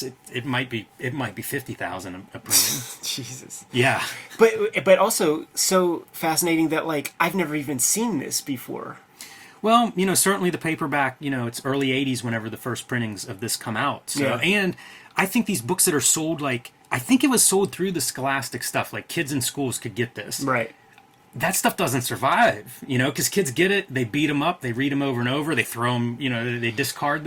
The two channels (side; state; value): both; identical; correlation 1.00